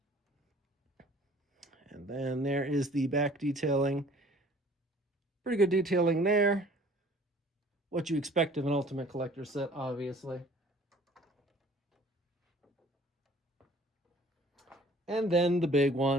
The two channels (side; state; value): both; normal; correlation 0.52